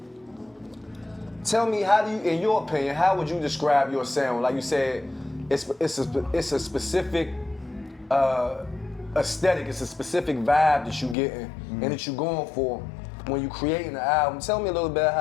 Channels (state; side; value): drops out; right; at 11.2 s